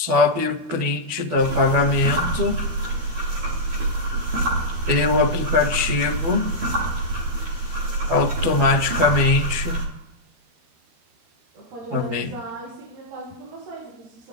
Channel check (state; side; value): late; left; 12 ms